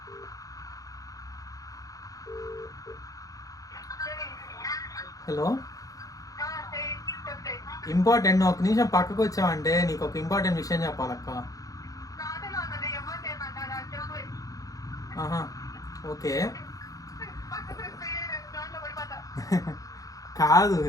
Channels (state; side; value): late; right; 0.17 ms